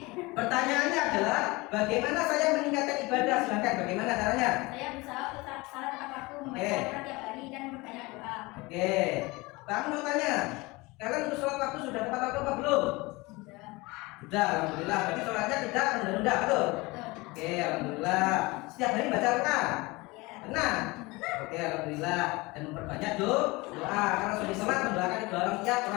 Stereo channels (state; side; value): quieter; right; 23.4 dB